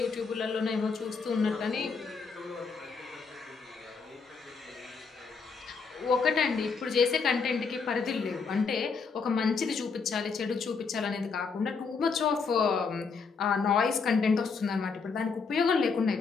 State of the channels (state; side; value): quieter; right; 5.2 dB